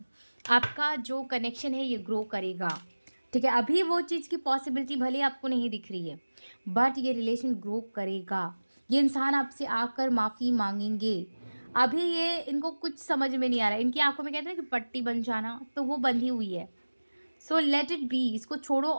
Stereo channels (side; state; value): both; inverted; correlation -1.00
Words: आपका जो कनेक्शन है ये ग्रो करेगा, ठीक है? अभी वो चीज़ की पॉसिबिलिटी भले आपको नहीं दिख रही है, बट ये रिलेशन ग्रो करेगा। ये इंसान आपसे आकर माफ़ी मांगेंगे। अभी ये इनको कुछ समझ में नहीं आ रहा है। इनकी आंखों में कहते हैं कि पट्टी बन जाना, तो वो बंधी हुई है। सो लेट इट बी, इसको छोड़ो